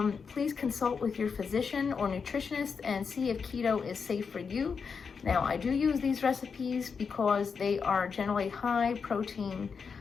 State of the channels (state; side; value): quieter; right; 5.7 dB